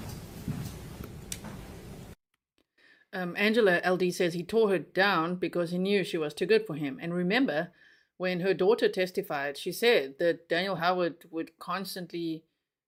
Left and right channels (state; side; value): identical; both; correlation 1.00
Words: Angela LD says he tore her down because he knew she was too good for him. And remember, when her daughter testified, she said that Daniel Howard would constantly,